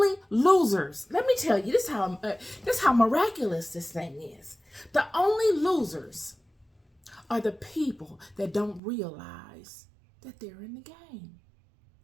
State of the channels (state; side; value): drops out; left; at 8.8 s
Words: losers, let me tell you, this is how miraculous this thing is. The only losers are the people that don't realize that they're in the game.